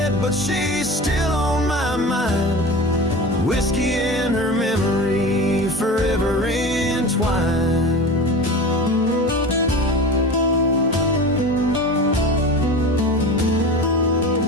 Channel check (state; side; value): normal; both; correlation 0.32